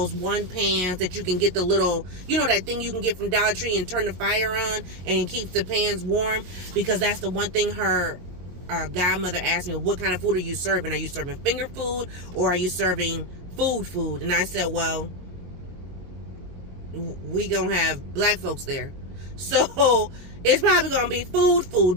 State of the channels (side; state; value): left; late; 22 ms